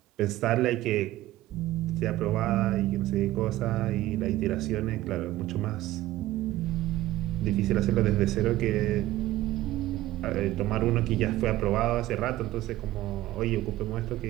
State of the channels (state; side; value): quieter; left; 15.7 dB